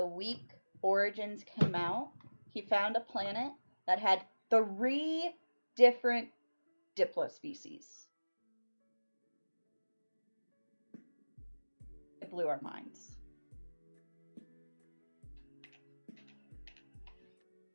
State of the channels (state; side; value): inverted; both; correlation -1.00